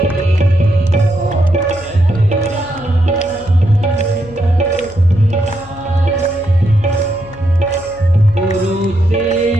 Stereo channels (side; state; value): left; noise; hum, 20 dB below the sound